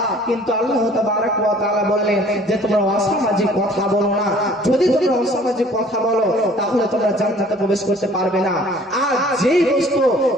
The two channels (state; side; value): normal; both; correlation 0.53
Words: কিন্তু আল্লাহ তাবারক ওয়া তাআলা বললেন যে তোমরা অসামাজিক কথা বলো না। যদি তোমরা অসামাজিক কথা বলো তাহলে তোমরা জান্নাতে প্রবেশ করতে পারবে না। আর